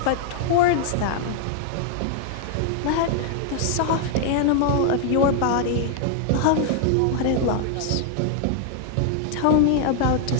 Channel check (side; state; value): both; different; correlation 0.00